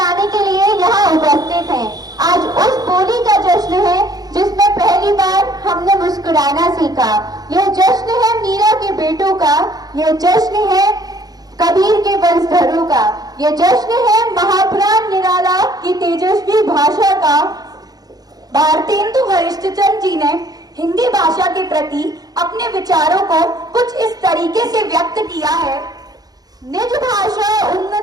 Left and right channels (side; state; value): left; late; 0.19 ms